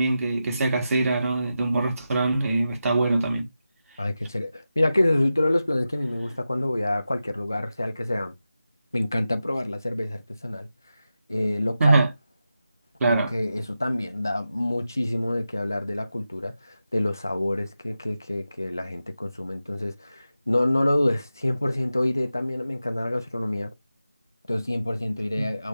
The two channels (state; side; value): inverted; both; correlation -0.91